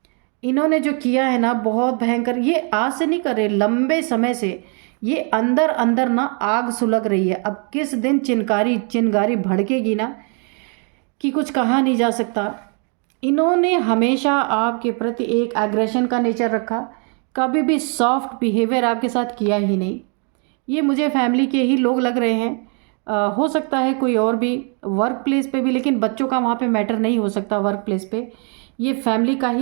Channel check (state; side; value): quieter; left; 38.9 dB